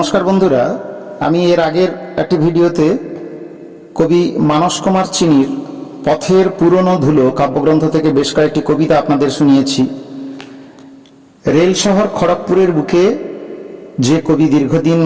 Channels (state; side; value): identical; both; correlation 1.00